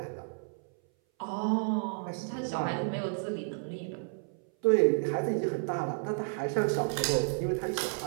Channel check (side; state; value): left; silent; 57 dB below the other